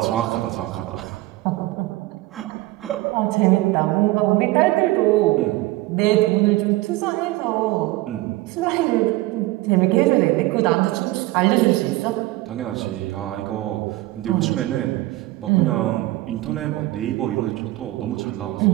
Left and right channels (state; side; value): quieter; left; 18.7 dB